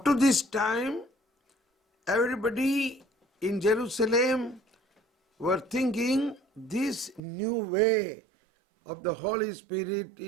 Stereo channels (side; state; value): left; drops out; at 7.2 s